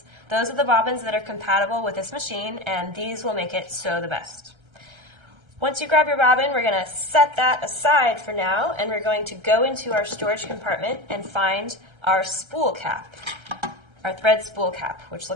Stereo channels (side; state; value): left; late; 1.3 ms